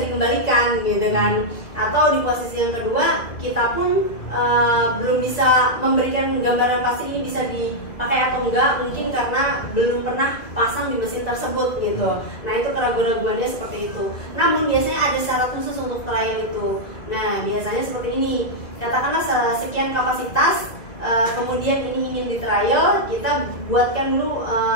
dikembalikan gitu kan. Atau di posisi yang kedua kita pun belum bisa memberikan gambaran pasti ini bisa dipakai atau enggak, mungkin karena belum pernah pasang di mesin tersebut gitu. Nah itu keraguan-raguannya seperti itu. Namun biasanya ada syarat khusus untuk trial itu. Nah biasanya seperti ini, katakanlah sekian kapasitas, kemudian ini ingin di trial, kita buatkan dulu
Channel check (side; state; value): right; late; 2.2 ms